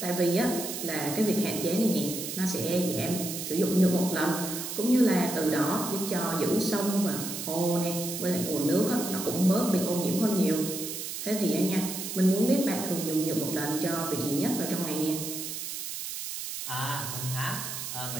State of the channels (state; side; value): noise; right; hiss, 6 dB below the sound